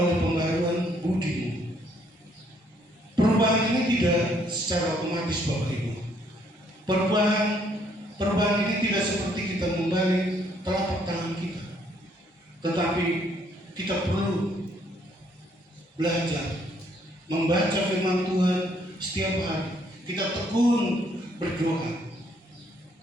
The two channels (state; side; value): normal; both; correlation 0.67